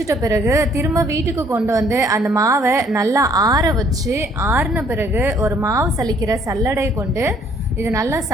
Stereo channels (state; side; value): normal; both; correlation 0.62